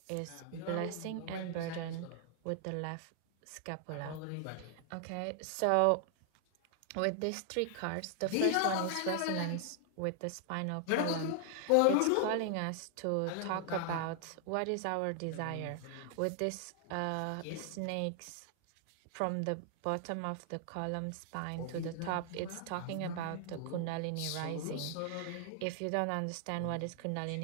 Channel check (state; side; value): different; both; correlation 0.00